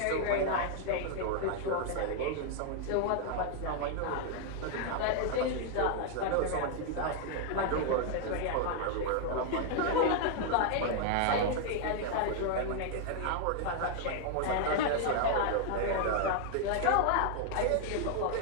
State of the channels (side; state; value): both; different; correlation 0.00